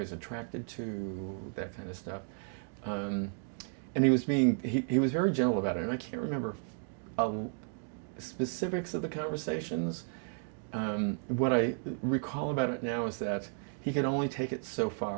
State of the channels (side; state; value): left; silent; 55 dB below the other